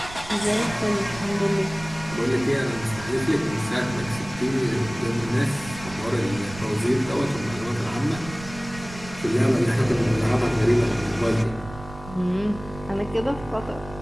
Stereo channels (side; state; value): right; noise; rumble, 15 dB below the sound